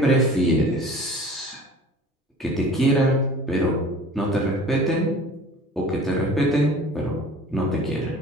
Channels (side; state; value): both; normal; correlation 0.44